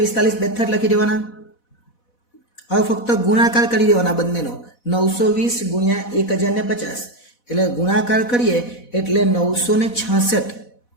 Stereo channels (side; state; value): right; late; 4.1 ms